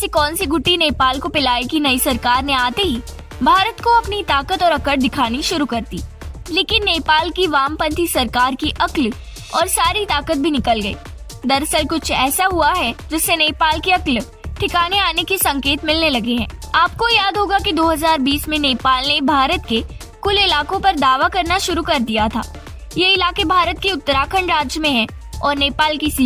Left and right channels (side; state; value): both; identical; correlation 1.00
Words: कौन सी गुट्टी नेपाल को पिलाई कि नई सरकार ने आते ही भारत को अपनी ताकत और अकड़ दिखानी शुरू कर दी। लेकिन नेपाल की वामपंथी सरकार की अक्ल और सारी ताकत भी निकल गई। दरअसल कुछ ऐसा हुआ है जिससे नेपाल की अक्ल ठिकाने आने के संकेत मिलने लगे हैं। आपको याद होगा कि 2020 में नेपाल ने भारत के कुल इलाकों पर दावा करना शुरू कर दिया था। ये इलाके भारत के उत्तराखंड राज्य में हैं और नेपाल की